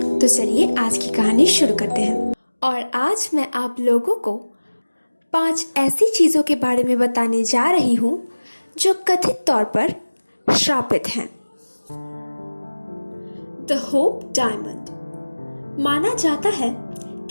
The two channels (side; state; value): both; inverted; correlation -1.00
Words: तो चलिए आज की कहानी शुरू करते हैं। और आज मैं आप लोगों को 5 ऐसी चीजों के बारे में बताने जा रही हूं जो कथित तौर पर श्रापित हैं। The hope diamond. माना जाता है